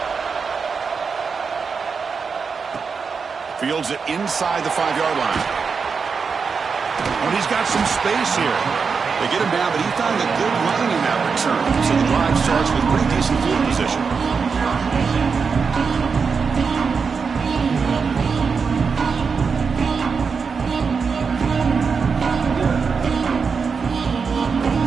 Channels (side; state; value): left; quieter; 5.4 dB